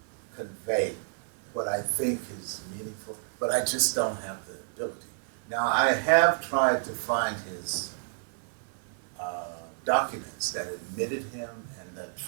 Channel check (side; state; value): left; silent; digital silence